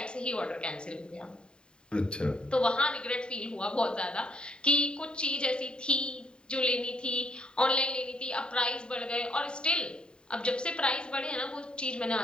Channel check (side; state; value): right; late; 0.050 ms